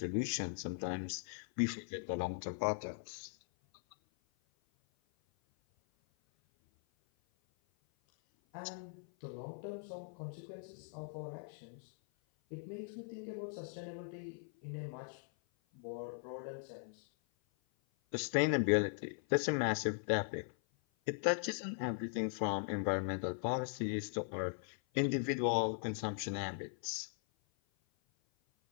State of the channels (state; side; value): silent; right; 51 dB below the other